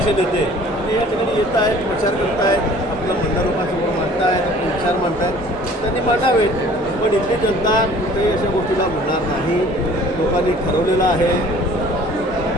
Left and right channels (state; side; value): normal; both; correlation 0.51